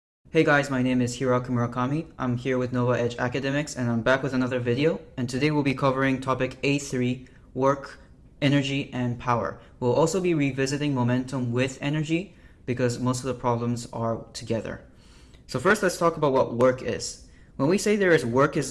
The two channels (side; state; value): both; identical; correlation 1.00